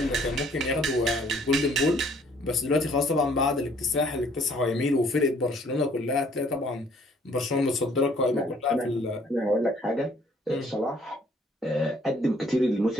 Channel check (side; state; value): both; normal; correlation 0.60